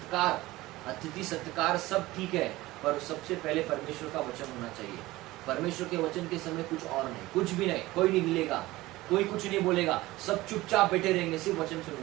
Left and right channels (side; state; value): left; quieter; 18.5 dB